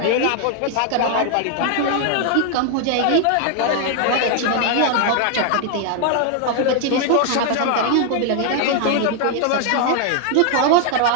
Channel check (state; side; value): different; both; correlation 0.00